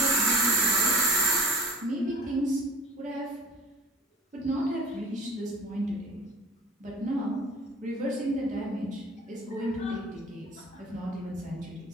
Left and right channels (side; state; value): both; normal; correlation 0.42